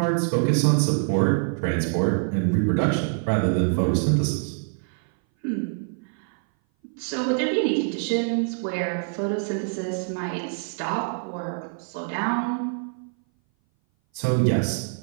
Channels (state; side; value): silent; left; 59 dB below the other